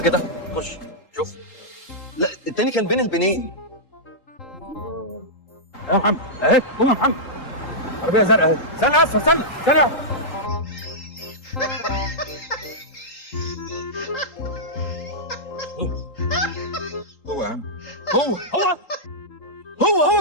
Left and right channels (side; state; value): right; late; 3.8 ms